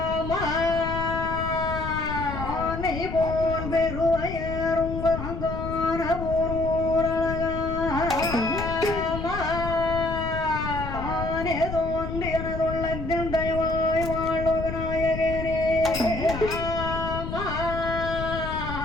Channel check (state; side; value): noise; left; rumble, 6 dB below the sound